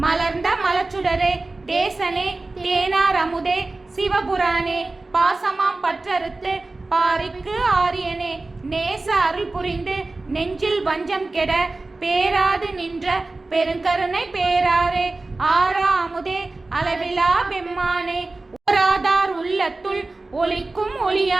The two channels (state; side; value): quieter; left; 3.3 dB